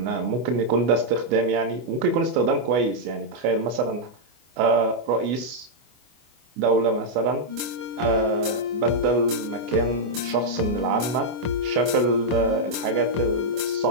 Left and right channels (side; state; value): left; late; 24 ms